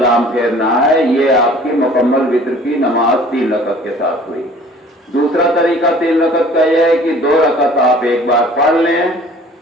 پھیرنا ہے۔ یہ آپ کی مکمل وتر کی نماز 3 رکعت کے ساتھ ہوئی۔ دوسرا طریقہ 3 رکعت کا یہ ہے کہ 2 رکعت آپ ایک بار پڑھ لیں،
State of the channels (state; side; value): normal; both; correlation 0.50